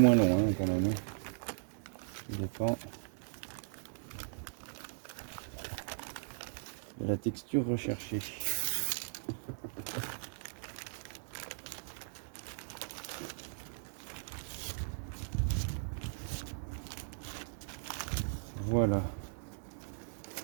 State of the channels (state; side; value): silent; left; digital silence